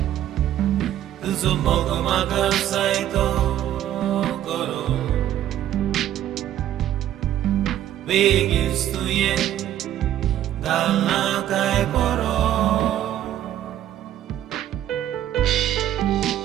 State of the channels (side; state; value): left; quieter; 12.0 dB